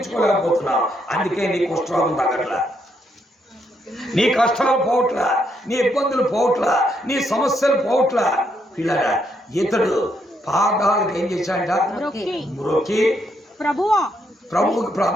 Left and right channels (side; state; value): both; normal; correlation 0.76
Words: అందుకే నీ కుష్ఠరోగం తగ్గట్లా, నీ కష్టాలు పోవట్లా, నీ ఇబ్బందులు పోవట్లా, నీ సమస్యలు పోవట్లా. పిల్లరా, ఇతడు పాదాలకు ఏం చేశాడంట? మ్రొక్కి ప్రభువుకి